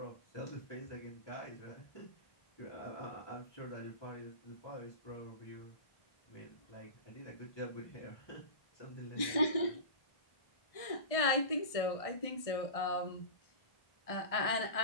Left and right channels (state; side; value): late; right; 1.6 ms